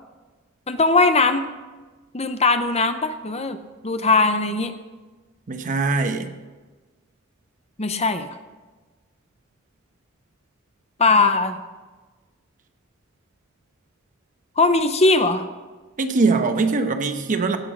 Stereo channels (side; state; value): both; normal; correlation 0.08